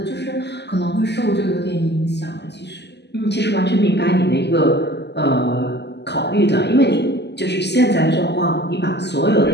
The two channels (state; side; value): late; right; 0.50 ms